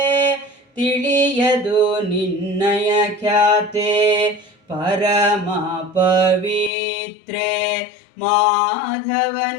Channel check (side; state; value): right; drops out; at 6.7 s